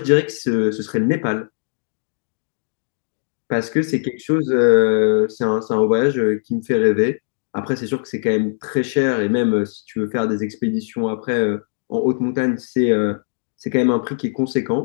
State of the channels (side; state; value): right; silent; digital silence